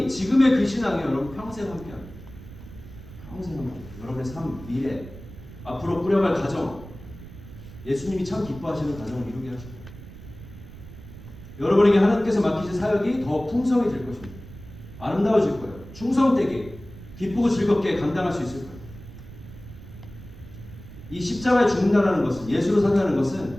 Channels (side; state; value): right; noise; rumble, 16 dB below the sound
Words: 지금의 그 신앙이 여러분 평생 함께합니다. 평생 함께. 여러분의 삶, 미래, 앞으로 꾸려갈 가정, 예수님이 참 기뻐하시는 가정을 이루게 하시고 여러분에게 하나님께서 맡기신 사역이 더 풍성해질 것입니다. 아름다워질 거예요. 충성되게 기쁘고 즐겁게 감당할 수 있을까요? 이 십자가에 죽는다는 것은, 예수로 산다는